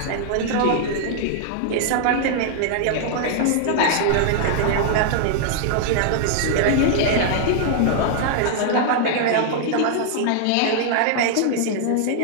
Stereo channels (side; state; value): both; different; correlation -0.01